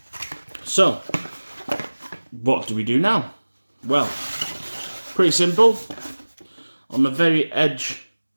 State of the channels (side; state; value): both; inverted; correlation -1.00